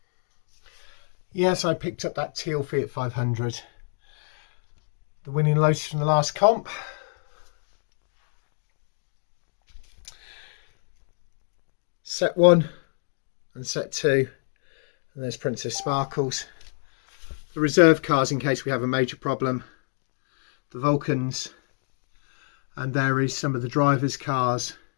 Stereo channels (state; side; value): silent; right; digital silence